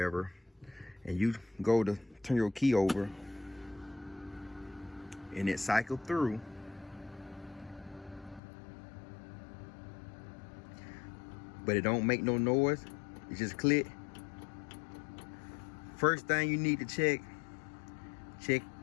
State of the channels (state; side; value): drops out; right; at 8.4 s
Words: and you go to turn your key over and it cycled through, but it don't make no noise, it just click. First thing you need to check